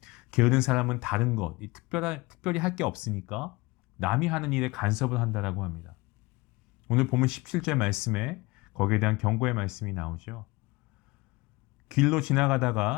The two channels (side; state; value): right; quieter; 22.9 dB